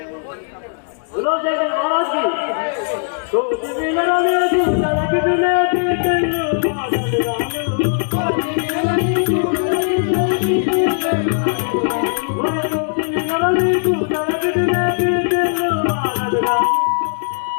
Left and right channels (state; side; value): silent; right; digital silence